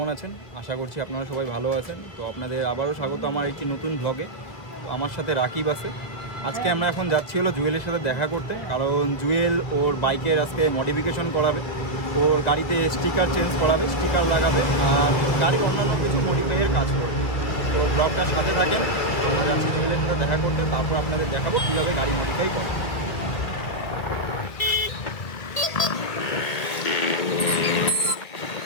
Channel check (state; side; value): late; right; 1.9 ms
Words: আছেন? আশা করছি আপনারা সবাই ভালো আছেন। তো আপনাদের আবারও স্বাগত আমার একটি নতুন ব্লগে। তো আমার সাথে রাকিব আছে। আজকে আমরা এখন যাচ্ছি হলো জুয়েলের সাথে দেখা করতে, কারণ জুয়েল ওর বাইকের আজকে মডিফিকেশন করাবে, ওর গাড়িতে স্টিকার চেঞ্জ করাবে, স্টিকার লাগাবে আর গাড়ির অন্যান্য কিছু মডিফাইয়ের কাজ করবে। তো ব্লগটার সাথে থাকেন, আমরা যাচ্ছি জুয়েলের সাথে দেখা করতে, তারপর আপনাদের দেখাবো কীভাবে গাড়ি মডিফাই করে।